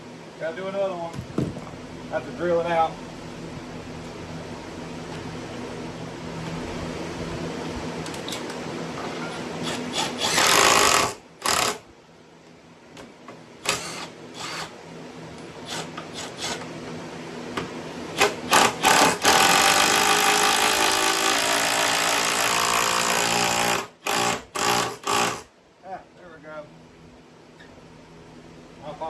Gotta do another one. Have to drill it out.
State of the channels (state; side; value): identical; both; correlation 1.00